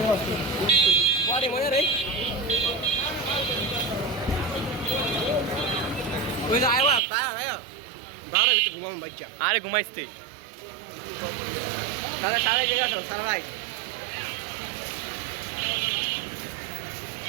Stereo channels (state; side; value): drops out; left; at 7.0 s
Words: আরে ঘুমাইস তুই? সারা জায়গা সারা রাইট।